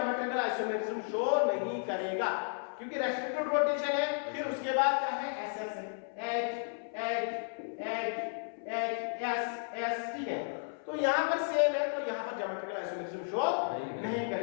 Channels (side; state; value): right; silent; 55 dB below the other